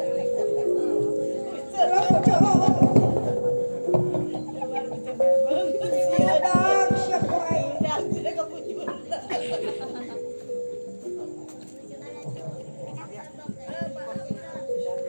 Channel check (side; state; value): both; inverted; correlation -1.00